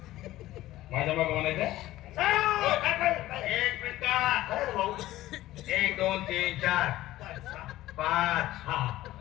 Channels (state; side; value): quieter; right; 15.7 dB